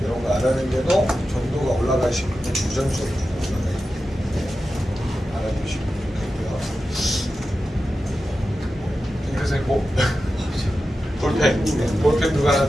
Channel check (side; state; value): both; normal; correlation 0.92